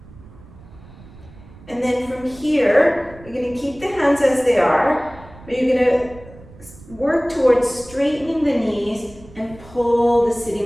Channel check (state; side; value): noise; right; rumble, 21 dB below the sound